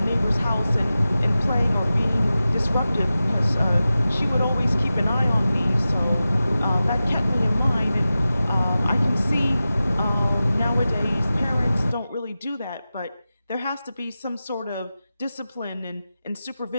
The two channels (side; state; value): both; inverted; correlation -0.94